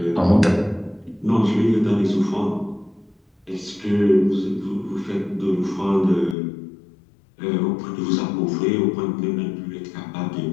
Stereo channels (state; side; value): drops out; right; at 6.4 s